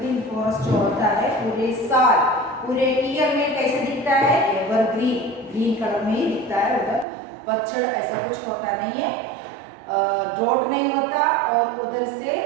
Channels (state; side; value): drops out; left; at 7.1 s